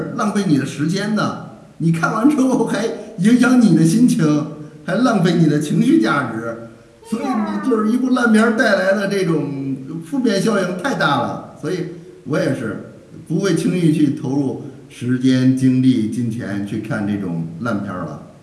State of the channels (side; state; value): both; identical; correlation 1.00